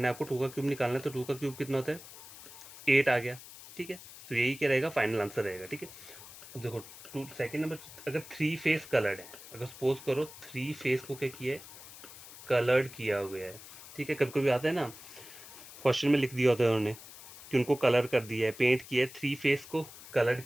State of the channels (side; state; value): left; noise; hiss, 16 dB below the sound